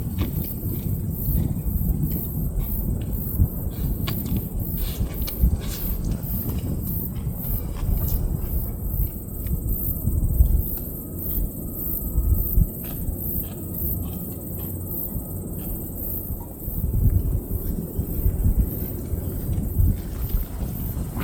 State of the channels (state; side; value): identical; both; correlation 1.00